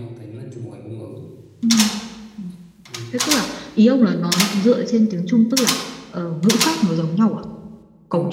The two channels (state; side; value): identical; both; correlation 1.00